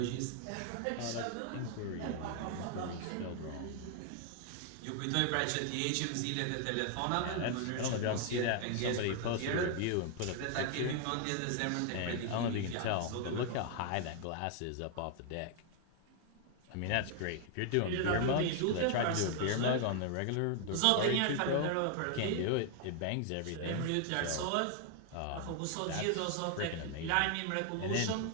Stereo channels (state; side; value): different; both; correlation 0.00